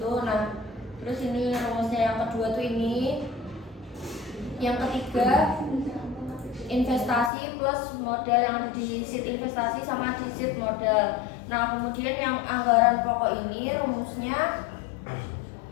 Nah, terus ini rumusnya yang kedua tuh ini. Yang ketiga investasi plus modal yang ada di sheet investasi sama di sheet modal. Nah, kemudian yang anggaran pokok ini rumusnya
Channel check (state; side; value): drops out; right; at 7.3 s